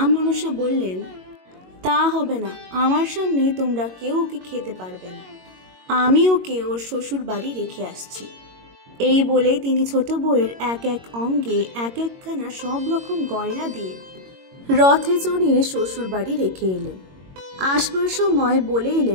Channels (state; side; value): late; left; 22 ms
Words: মনসা বললেন, তা হবে না, আমার সামনে তোমরা কেউ ওকে খেতে পারবে না, আমি ওকে ওর শ্বশুর বাড়ি রেখে আসছি। এই বলে তিনি ছোট বউয়ের এক এক অঙ্গে এক একখানা সব রকম গয়না দিয়ে রথে চড়িয়ে শ্বশুর বাড়ি রেখে এলেন। আসবার সময় বলে